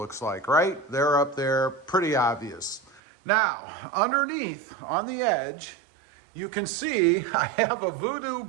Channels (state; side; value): drops out; left; at 3.0 s